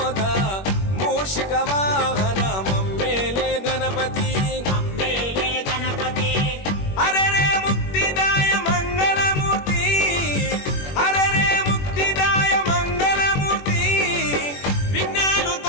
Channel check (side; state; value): right; late; 21 ms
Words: మూషిక వాహన మమ్మేలే గణపతి హరే రే ముక్తిదాయ మంగళమూర్తి హరే రే ముక్తిదాయ మంగళమూర్తి విఘ్నాలు